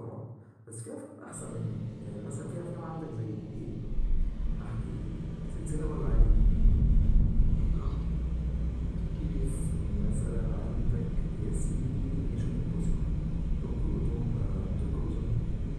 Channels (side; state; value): both; identical; correlation 1.00